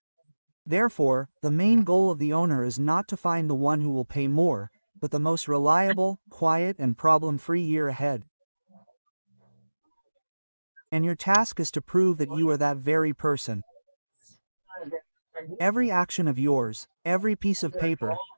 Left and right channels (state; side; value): inverted; both; correlation -1.00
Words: Therefore, the main goal of the owner is not to find the one who will pay more, but the most reliable, quiet, and problem-free year ahead. And your task is to prove that you are that very person. Every action of yours, every piece of paper,